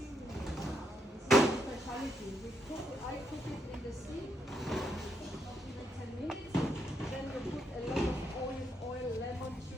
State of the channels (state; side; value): normal; both; correlation 0.78